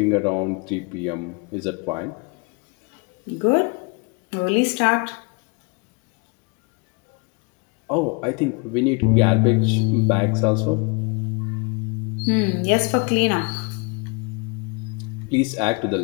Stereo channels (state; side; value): quieter; right; 31.4 dB